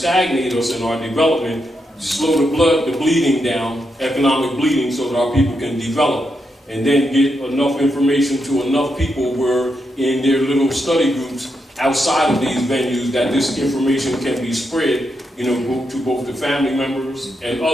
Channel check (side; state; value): both; normal; correlation 0.83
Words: us in our development, slow the bleeding down, economic bleeding, so that our people can develop. And then get enough information to enough people where in their little study groups outside of these venues that this information can be spread, you know, to both the family members and